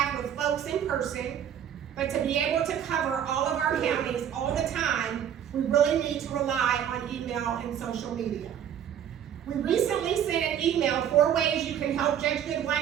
with folks in person, but to be able to cover all of our counties all the time, we really need to rely on email and social media. We recently sent an email 4 ways you can help Judge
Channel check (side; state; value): left; quieter; 9.5 dB